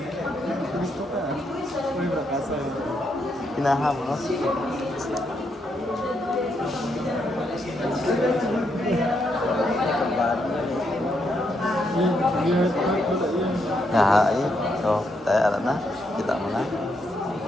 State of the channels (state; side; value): normal; both; correlation 0.78